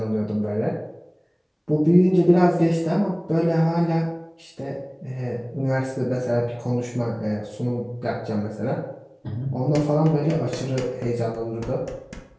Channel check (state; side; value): identical; both; correlation 1.00